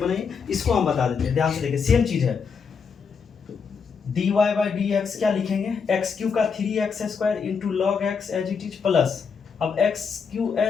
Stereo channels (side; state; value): right; quieter; 5.8 dB